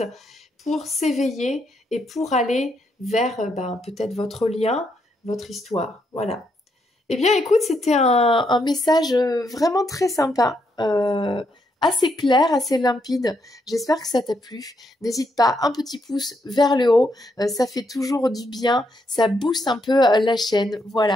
pour s'éveiller et pour aller vers peut-être votre lien, votre histoire. Voilà. Eh bien, écoute, c'était un message vraiment très sympa, assez clair, assez limpide. J'espère que ça t'a plu. N'hésite pas, un petit pouce vers le haut, ça fait toujours du bien, ça booste un peu la chaîne.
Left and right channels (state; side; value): normal; both; correlation 0.77